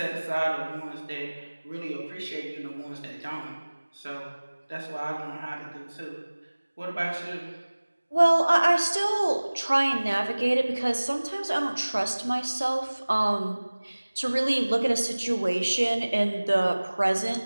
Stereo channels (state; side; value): inverted; both; correlation -1.00